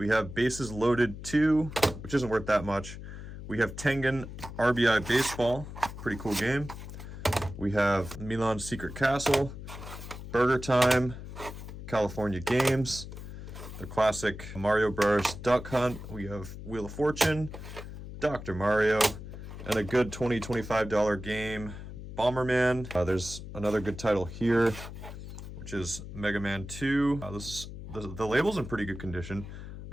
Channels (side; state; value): left; noise; hum, 11 dB below the sound